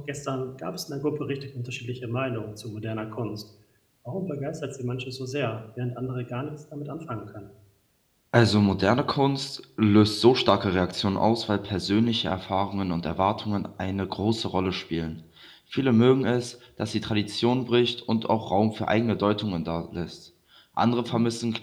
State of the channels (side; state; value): both; identical; correlation 1.00